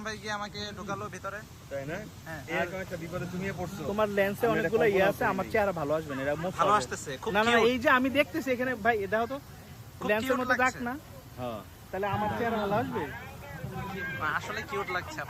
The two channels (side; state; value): both; identical; correlation 1.00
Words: ভাই গিয়ে আমাকে ঢোকালো ভিতরে। তাই না? হ্যাঁ, এরকম একটা বিপদে তুমিও পড়ছো। তোমার লেন্সে আমি অনেকগুলো এটা ইয়ে কল্পনা আছে, আমার করিনি। চেহারা ভালো আসবে না, এটা মুখ ভালো হবে। আসতেছে, খুব না না, cute। এই যে আমি দেখতেছি এখানে, ভাই দেখো তো খুব লেন্সের cute মতো দাগ লাগছে। না, হ্যাঁ, তাহলে আমার চেহারা ভালো আসবে আসলে কিউট লাগছে